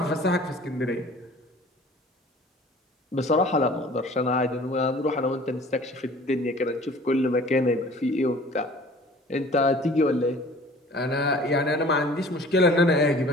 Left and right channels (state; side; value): normal; both; correlation 0.48